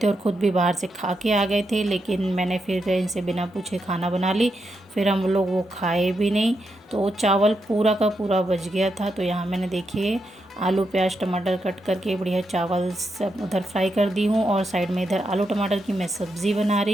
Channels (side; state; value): both; normal; correlation 0.84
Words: और ख़ुद भी बाहर से खा के आ गए थे, लेकिन मैंने फिर इनसे बिना पूछे खाना बना ली। फिर हम लोग वो खाए भी नहीं, तो चावल पूरा का पूरा बच गया था। तो यहाँ मैंने देखिए आलू प्याज टमाटर कट करके बढ़िया चावल सब उधर फ्राई कर दी हूँ, और साइड में इधर आलू टमाटर की मैं सब्ज़ी बना